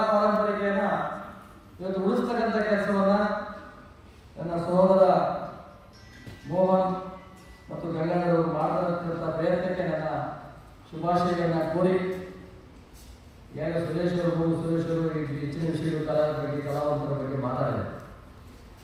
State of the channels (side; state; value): both; identical; correlation 1.00